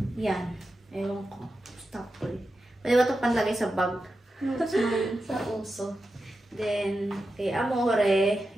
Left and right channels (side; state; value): both; normal; correlation 0.90